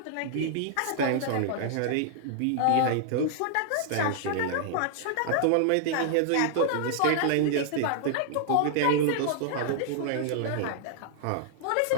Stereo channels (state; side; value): different; both; correlation -0.01